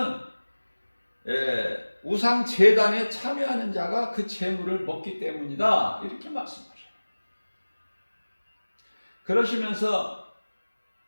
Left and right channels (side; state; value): both; inverted; correlation -1.00